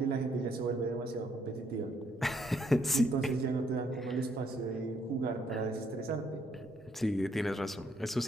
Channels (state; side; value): normal; both; correlation 0.71